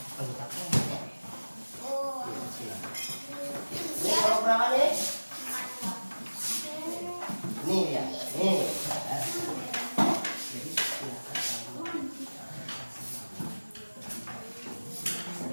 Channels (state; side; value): inverted; both; correlation -1.00